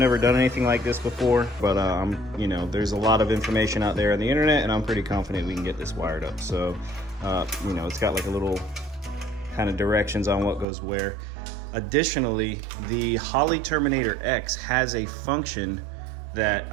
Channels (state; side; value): drops out; left; at 10.7 s